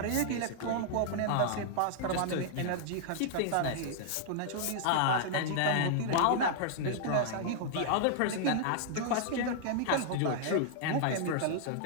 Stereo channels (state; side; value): different; both; correlation -0.01